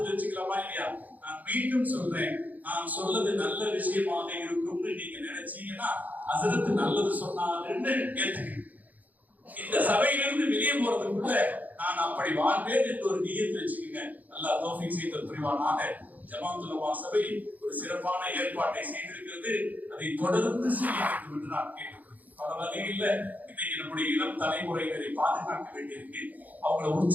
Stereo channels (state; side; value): late; left; 0.080 ms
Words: வச்சுக்கலாமா இல்லையா? நான் மீண்டும் சொல்றேன், நான் சொல்றது நல்ல விஷயமாக இருக்கும்னு நீங்க நினைச்சீங்கன்னா ஹஸரத் நல்லது சொன்னாருன்னு ஏத்துக்கங்க. இந்த சபையிலிருந்து வெளியே போறதுக்குள்ள நான் அப்படி வாழ்வேன் என்று ஒரு நியத்து வச்சுக்கோங்க. அல்லாஹ் தௌஃபீக் செய்து புரிவானாக. ஜமாஅத்துல் உலமா சபை ஒரு சிறப்பான ஏற்பாட்டை செய்திருக்கிறது. அதை தொடர்ந்து செய்ய வேண்டும் என்று நான் கேட்டுக்கொள்கிறேன். பல வகையில் இன்னைக்கு நம்முடைய இளம் தலைமுறையினரை பாதுகாக்க வேண்டியிருக்கு, அவங்களை